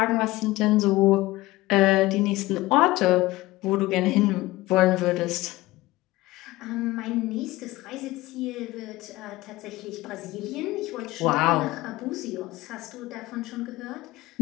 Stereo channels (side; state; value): right; quieter; 18.8 dB